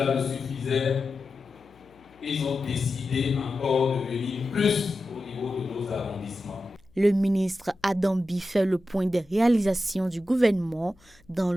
ne suffisait, ils ont décidé encore de venir plus au niveau de nos arrondissements. Le ministre Adambi fait le point des réalisations du gouvernement dans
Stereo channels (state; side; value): noise; left; hum, 30 dB below the sound